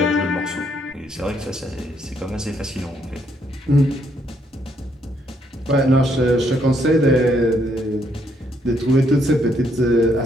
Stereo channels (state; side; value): normal; both; correlation 0.72